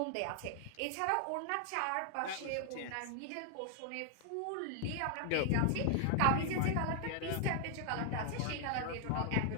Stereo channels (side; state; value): both; different; correlation 0.00